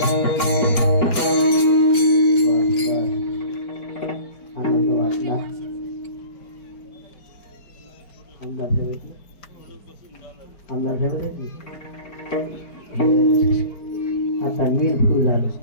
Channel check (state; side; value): late; right; 4.9 ms